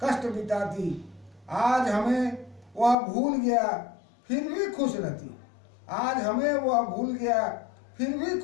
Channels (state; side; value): drops out; right; at 3.0 s